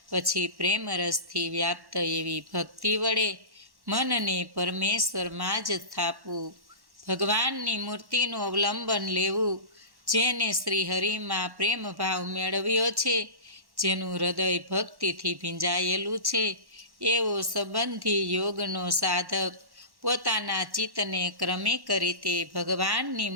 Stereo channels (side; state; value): left; late; 1.1 ms